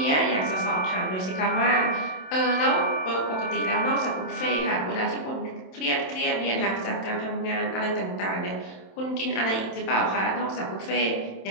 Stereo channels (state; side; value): late; right; 27 ms